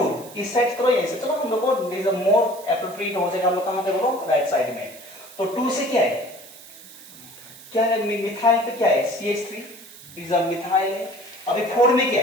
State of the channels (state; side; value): noise; right; hiss, 18 dB below the sound